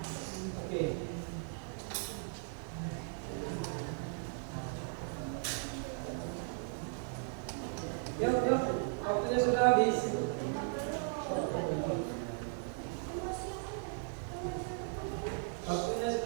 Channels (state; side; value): silent; left; 53 dB below the other